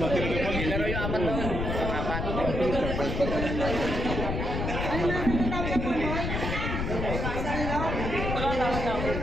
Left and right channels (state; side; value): noise; left; rumble, 2 dB below the sound